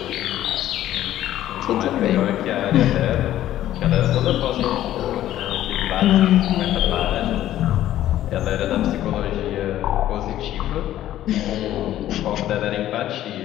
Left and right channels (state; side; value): quieter; right; 13.0 dB